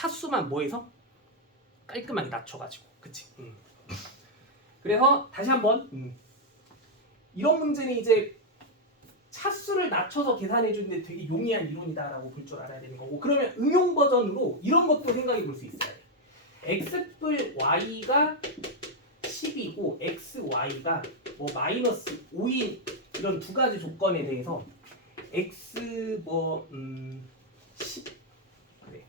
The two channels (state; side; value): normal; both; correlation 0.00